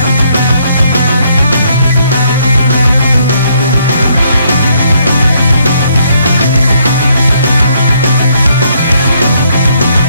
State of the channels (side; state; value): both; inverted; correlation -0.70